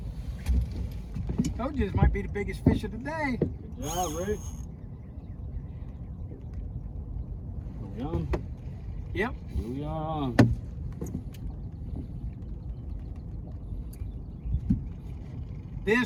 Told you this might be the biggest fish of the day. Good job, Rick. Are we on? Yep. Here we are on.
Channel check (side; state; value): both; identical; correlation 1.00